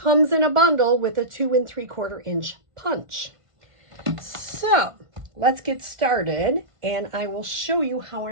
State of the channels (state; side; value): late; left; 1.5 ms